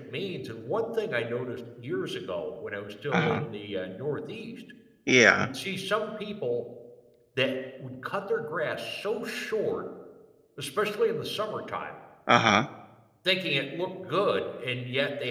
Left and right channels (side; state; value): both; identical; correlation 1.00